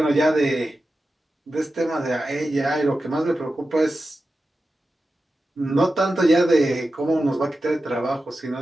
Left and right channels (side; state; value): both; normal; correlation 0.92